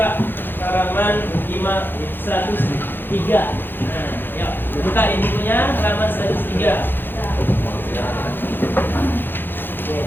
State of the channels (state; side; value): late; right; 0.098 ms